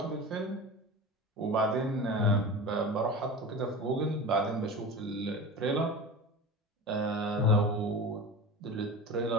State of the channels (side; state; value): both; normal; correlation 0.31